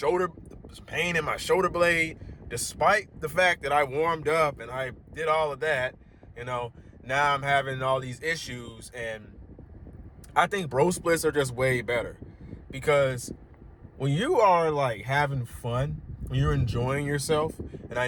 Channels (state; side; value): identical; both; correlation 1.00